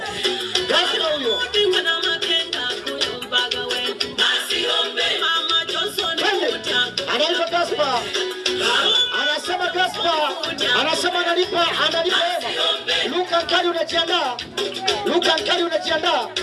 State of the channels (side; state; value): both; identical; correlation 1.00